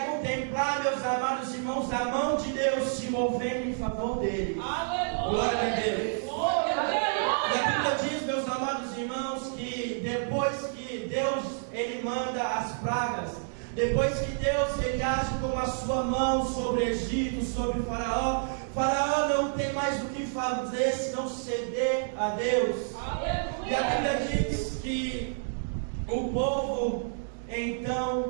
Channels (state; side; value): silent; left; digital silence